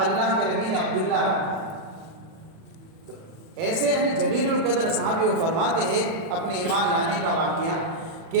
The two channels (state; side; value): late; left; 37 ms